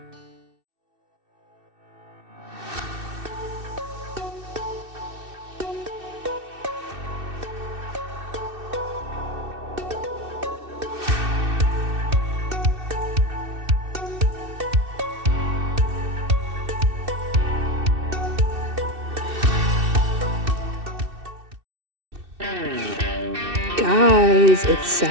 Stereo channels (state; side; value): late; left; 2.6 ms